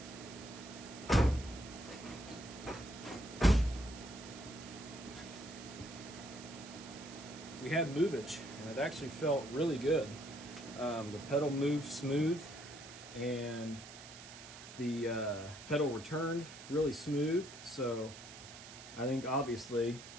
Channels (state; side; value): noise; right; hiss, 14 dB below the sound